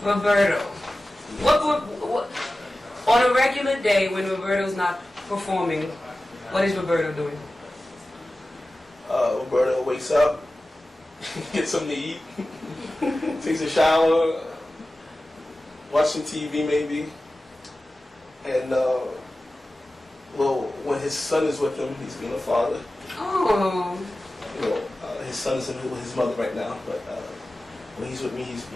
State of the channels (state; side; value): normal; both; correlation 0.95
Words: Roberto. What on a regular day when Roberto's not performing, what is Roberto doing? Roberto wakes up, gets something to eat, takes a shower, watching TV maybe, and when his son is with him, he's being a father. Oh. His son is with his mother right now, but when he's with me, he's